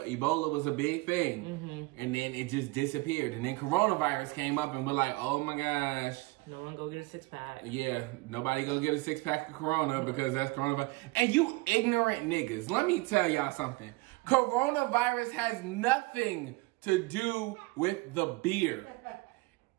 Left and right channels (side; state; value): left; quieter; 24.0 dB